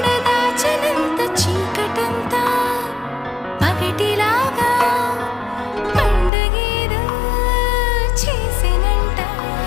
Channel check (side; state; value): right; drops out; at 6.3 s